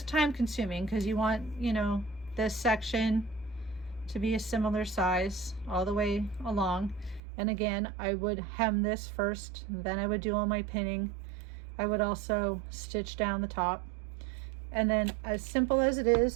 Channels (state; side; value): drops out; left; at 7.2 s